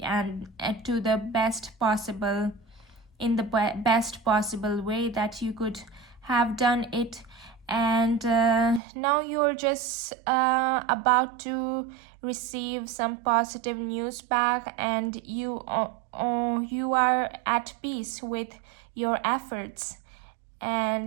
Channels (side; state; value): left; drops out; at 8.8 s